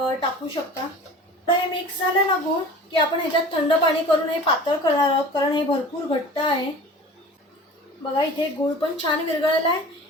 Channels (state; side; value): normal; both; correlation 0.41